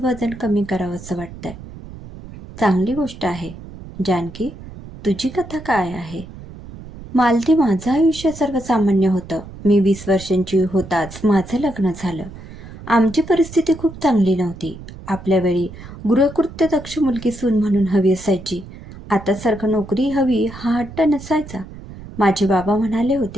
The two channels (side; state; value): right; noise; rumble, 15 dB below the sound